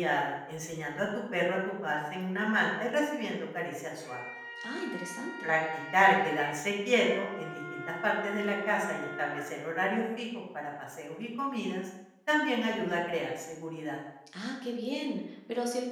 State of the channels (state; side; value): identical; both; correlation 1.00